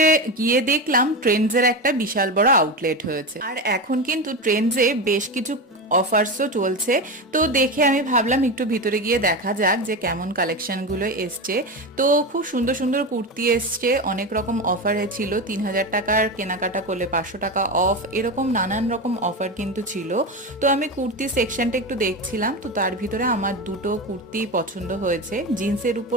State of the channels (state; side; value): normal; both; correlation 0.19